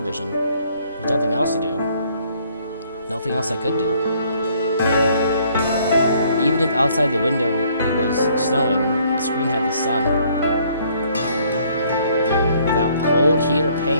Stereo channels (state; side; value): inverted; both; correlation -0.63